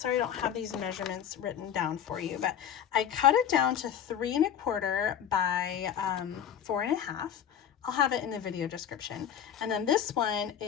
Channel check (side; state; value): right; quieter; 9.3 dB